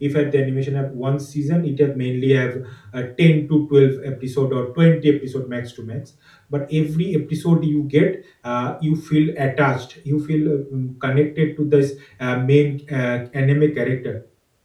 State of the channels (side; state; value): both; identical; correlation 1.00